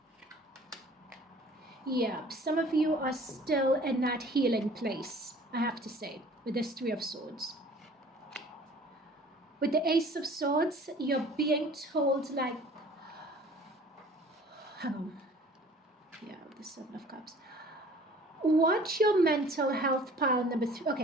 Yeah, some of you are still in that healing place, I have to say, with this Three of Swords. With the Ace of Swords, you're being told, like, hang on. Yeah, the Seven of Cups. Watch your mental health, pile number 3.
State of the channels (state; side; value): normal; both; correlation 0.50